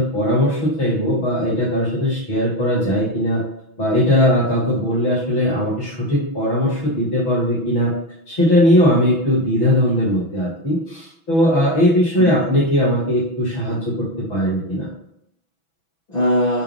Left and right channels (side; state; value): right; late; 6.1 ms